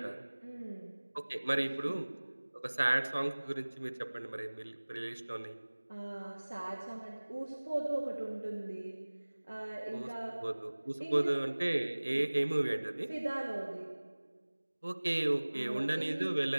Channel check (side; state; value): both; inverted; correlation -1.00